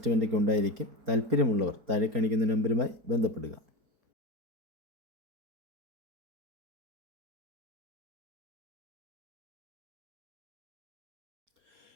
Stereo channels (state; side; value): late; left; 4.3 ms